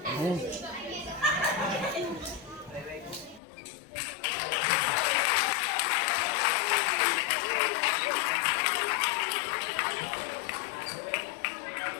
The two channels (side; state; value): right; drops out; at 3.4 s